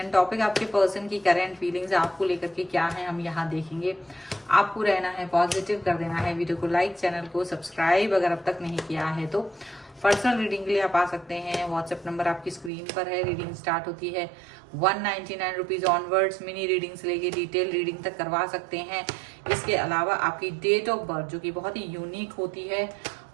टॉपिक आपके पर्सन की करंट फीलिंग्स आपको लेकर के क्या है हम यहाँ देखेंगे। आपको रहना है पॉजिटिव, कर देना है वीडियो को लाइक, चैनल को सब्सक्राइब अगर अब तक नहीं किया है तो। पर्सनल रीडिंग के लिए आप आ सकते हैं। व्हाट्सएप नंबर आपकी स्क्रीन पर है। रीडिंग स्टार्ट होती है 199 रुपीज ऑनवर्ड्स। मिनी रीडिंग से लेके डिटेल रीडिंग तक करवा सकते हैं। इसके अलावा आपकी डेट ऑफ बर्थ जो कि बहुत ही यूनिक होती है,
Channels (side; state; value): left; drops out; at 12.7 s